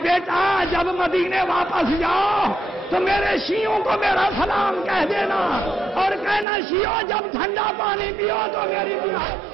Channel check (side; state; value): left; drops out; at 6.5 s